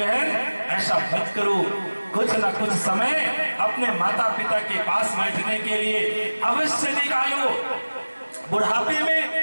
ऐसा मत करो। कुछ न कुछ समय अपने माता पिता के पास बैठने के लिए अवश्य निकालो। बुढ़ापे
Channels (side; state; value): both; inverted; correlation -1.00